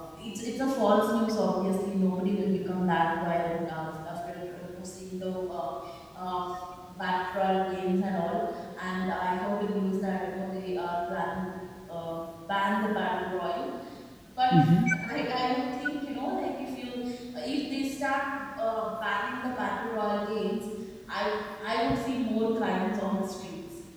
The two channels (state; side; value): identical; both; correlation 1.00